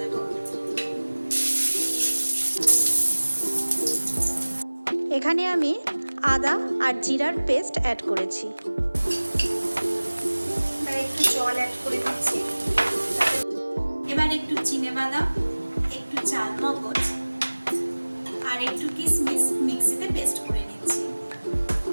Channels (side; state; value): both; inverted; correlation -1.00